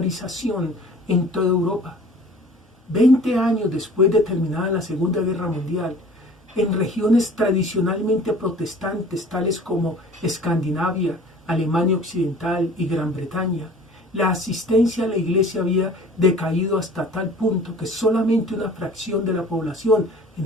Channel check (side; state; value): both; normal; correlation 0.47